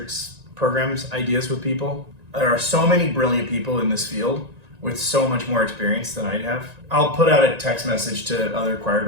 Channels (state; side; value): late; left; 1.9 ms